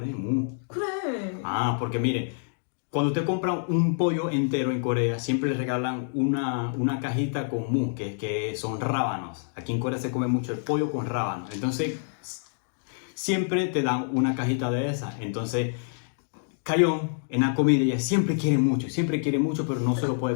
mu. 그래. Porque mire, cuando usted compra un pollo entero en Corea, siempre le regalan una cajita con mu, que son rábanos. Aquí en Corea se come mucho el pollo con rábanos. Entonces, siempre te dan una cajita de esas. Entonces, Cayón, en la comida, ella siempre quiere mucho, pero no se lo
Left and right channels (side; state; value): right; silent; digital silence